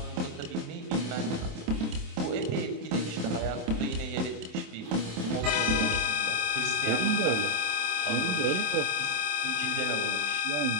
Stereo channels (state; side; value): late; left; 27 ms